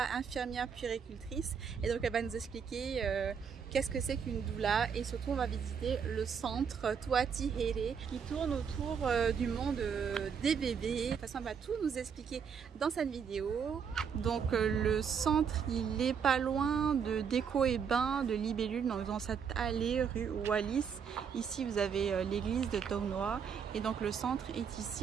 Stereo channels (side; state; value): left; quieter; 6.9 dB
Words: infirmière puéricultrice, et donc elle va nous expliquer qu'est-ce que c'est qu'une doula, et surtout on va visiter le centre Tuati Here qui tourne autour du monde des bébés. De toute façon elle va tout nous expliquer dans cette vidéo. Donc le centre il est pas loin de Déco et Bain de Libellule, dans cette allée rue Wallis. Ici vous avez l'église de Taunois, et donc le centre est